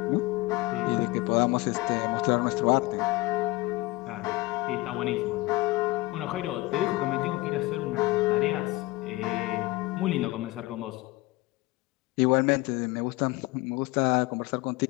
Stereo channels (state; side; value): quieter; right; 20.9 dB